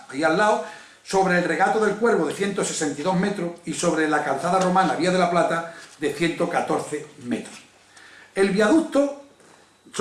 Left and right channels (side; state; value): both; identical; correlation 1.00